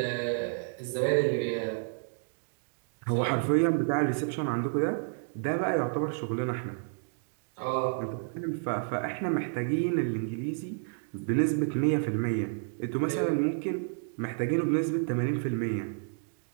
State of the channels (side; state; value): left; silent; digital silence